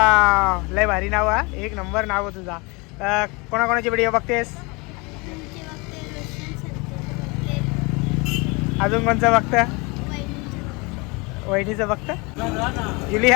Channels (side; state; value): right; quieter; 27.7 dB